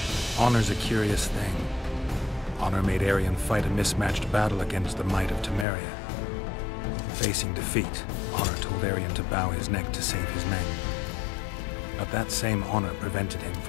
Honor's a curious thing. Honor made Arion fight a mismatched battle against the might of Temeria. Facing defeat, Honor told Arion to bow his neck to save his men. But that same honor prevented him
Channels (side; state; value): right; drops out; at 5.7 s